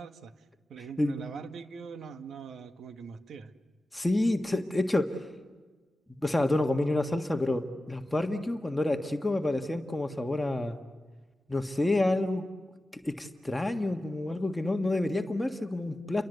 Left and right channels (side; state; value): both; normal; correlation 0.94